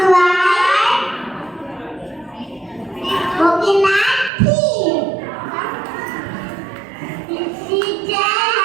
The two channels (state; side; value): drops out; left; at 4.3 s